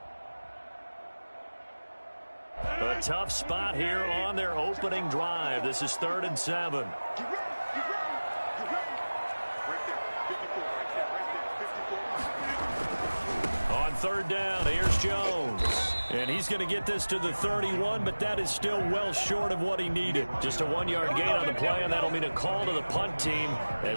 A tough spot here on their opening drive. This is 3rd and 7. On 3rd down, here's Jones. And he's going to get this to the 31, but that is still well short of what he needed. Just a 1-yard gain on the play, and that'll mean a call to the punt team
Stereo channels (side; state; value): both; inverted; correlation -1.00